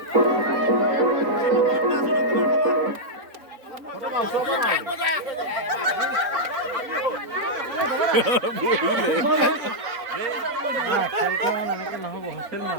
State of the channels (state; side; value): late; left; 4.0 ms